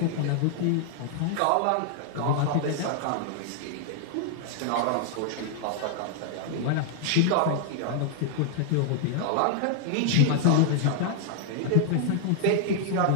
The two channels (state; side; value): different; both; correlation -0.01